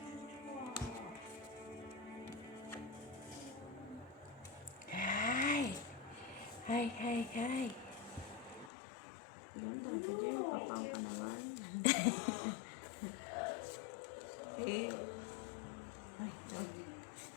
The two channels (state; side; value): drops out; right; at 8.7 s